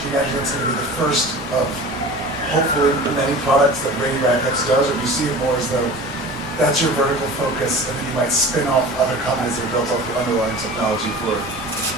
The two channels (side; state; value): both; normal; correlation 0.38